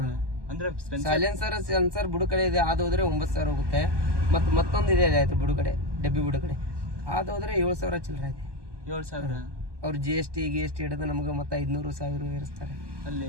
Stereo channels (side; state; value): left; late; 1.2 ms